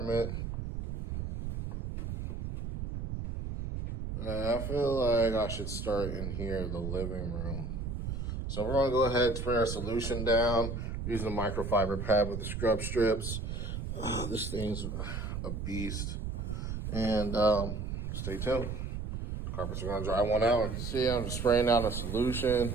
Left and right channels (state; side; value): noise; right; rumble, 4 dB below the sound